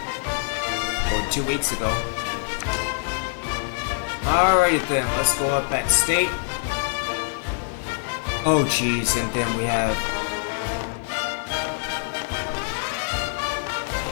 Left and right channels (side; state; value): right; silent; digital silence